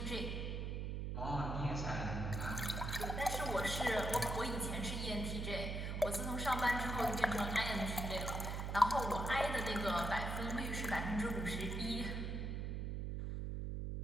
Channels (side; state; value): right; noise; hum, 2 dB below the sound